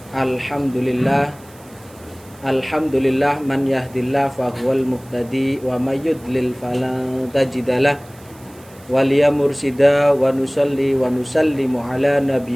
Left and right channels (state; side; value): noise; right; hiss, 25 dB below the sound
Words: Alhamdulillah man yahdillah fahuwal muhtadi wa may yudlil falan tajidalah waliya mursida wa nusalli wa nusallimu ala